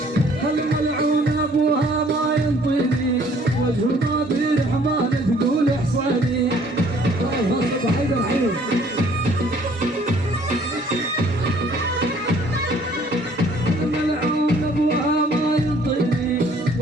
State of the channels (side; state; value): both; normal; correlation 0.58